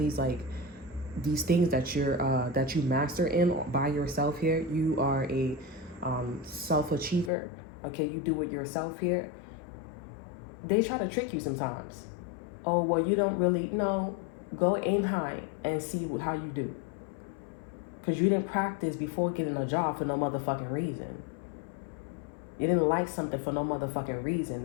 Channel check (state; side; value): drops out; right; at 7.3 s